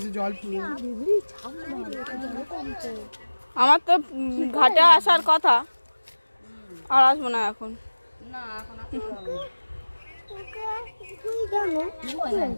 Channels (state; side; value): inverted; both; correlation -1.00